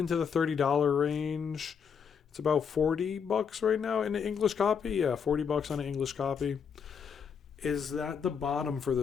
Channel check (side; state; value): right; quieter; 6.8 dB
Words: the $30 range. It's about $40 right now in the English copy. Yeah, $40 on an English copy. Is that the bottom for